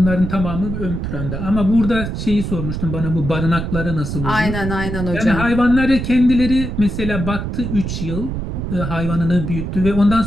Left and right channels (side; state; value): right; noise; rumble, 4 dB below the sound